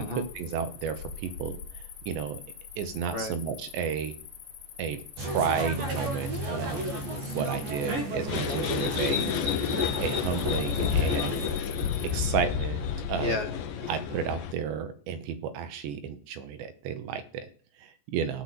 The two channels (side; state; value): left; late; 14 ms